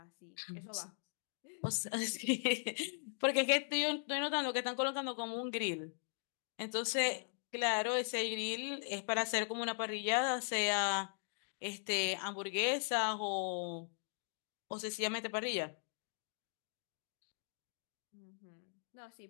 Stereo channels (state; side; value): silent; right; digital silence